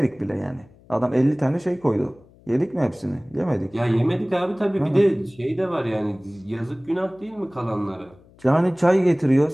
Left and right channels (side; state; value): left; noise; hum, 27 dB below the sound